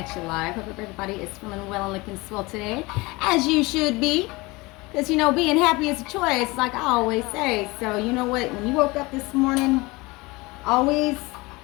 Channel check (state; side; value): quieter; right; 23.3 dB